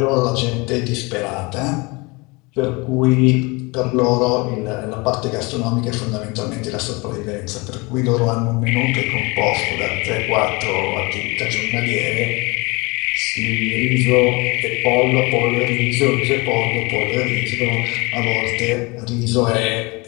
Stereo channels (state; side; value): quieter; right; 26.3 dB